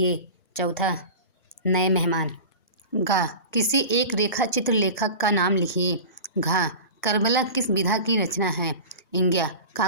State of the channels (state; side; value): inverted; both; correlation -0.33